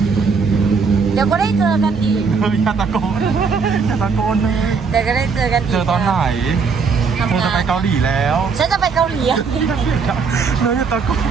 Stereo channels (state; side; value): quieter; left; 5.3 dB